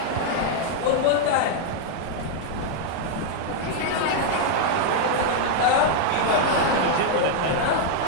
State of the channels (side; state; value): both; different; correlation 0.00